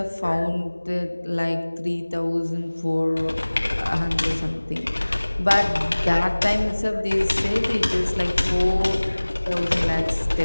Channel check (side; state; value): both; inverted; correlation -1.00